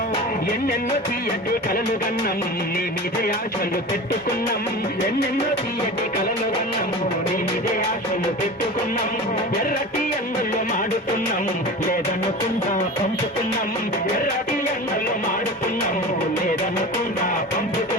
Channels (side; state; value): both; normal; correlation 0.33